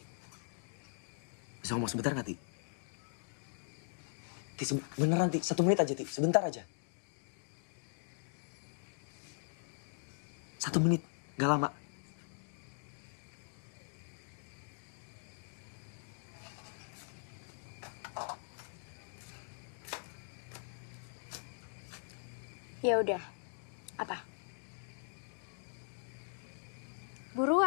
bisa ngomong sebentar nggak, Ti? Ti, beneran, Ti. 1 menit aja, Ti. Sebentar aja. 1 menit, nggak lama. Ya udah. Apa?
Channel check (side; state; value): right; silent; digital silence